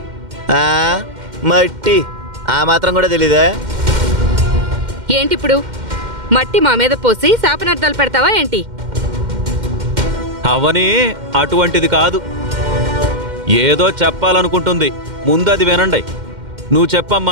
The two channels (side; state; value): left; late; 2.1 ms